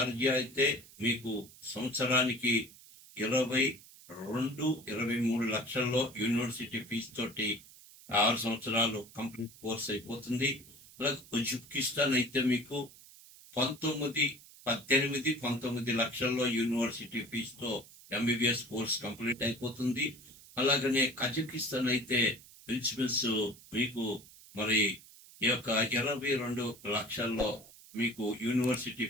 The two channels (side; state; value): right; noise; hiss, 21 dB below the sound